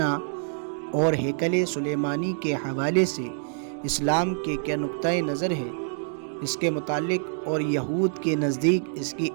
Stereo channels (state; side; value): silent; left; digital silence